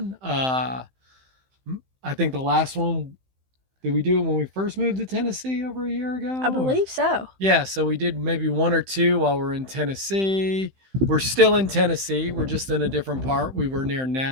I think the last one, did we do it when we first moved to Tennessee over a year I ago? Or believe so. yeah, so we did maybe one or two while we're in Tennessee. We're still in Tennessee. We're just in a different part. We were near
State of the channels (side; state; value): left; late; 15 ms